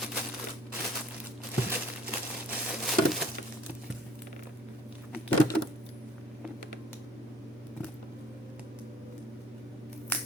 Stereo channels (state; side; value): normal; both; correlation 0.55